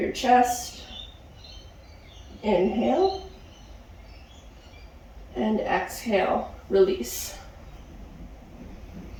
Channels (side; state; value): both; identical; correlation 1.00